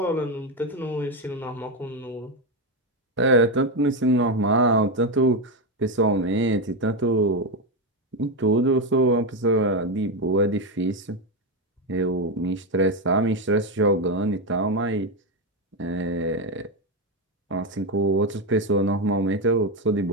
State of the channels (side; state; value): both; normal; correlation 0.09